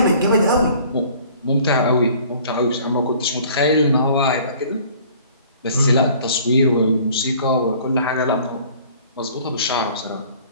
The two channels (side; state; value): both; inverted; correlation -0.52